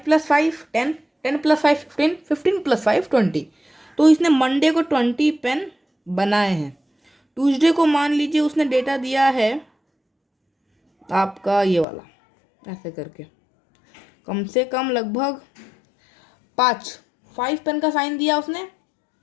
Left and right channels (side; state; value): right; drops out; at 11.9 s